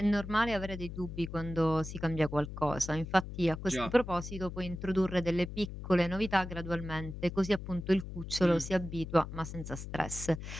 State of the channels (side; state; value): left; noise; hum, 9 dB below the sound